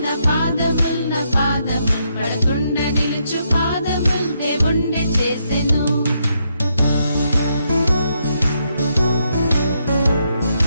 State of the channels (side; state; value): both; inverted; correlation -0.78